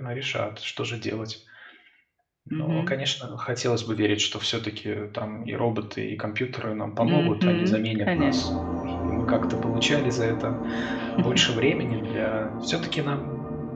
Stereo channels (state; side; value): identical; both; correlation 1.00